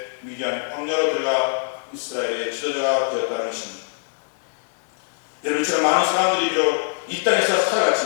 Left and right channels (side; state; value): right; silent; digital silence